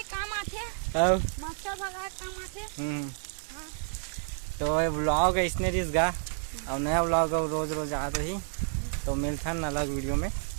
काम आते मच्छर भगाए काम आते। तो ये ब्लॉग है इसने रिस गा और नया ब्लॉग है रोज रोज आ रही तो मिलता है अलग वीडियो में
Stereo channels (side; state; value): left; silent; 58 dB below the other